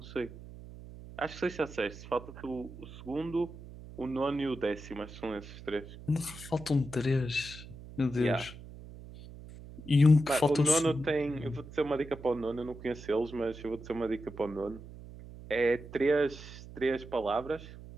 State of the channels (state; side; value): noise; right; hum, 15 dB below the sound